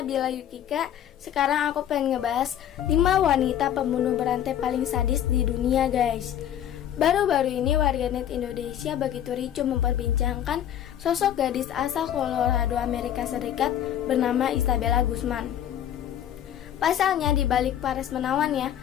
Yukika. Sekarang aku pengen ngebahas 5 wanita pembunuh berantai paling sadis di dunia guys. Baru-baru ini warganet Indonesia begitu ricuh memperbincangkan sosok gadis asal Colorado, Amerika Serikat bernama Isabella Guzman. Pasalnya di balik paras menawannya,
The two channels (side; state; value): right; quieter; 10.5 dB